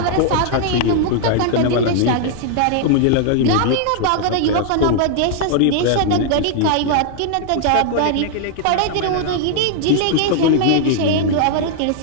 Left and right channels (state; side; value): different; both; correlation 0.00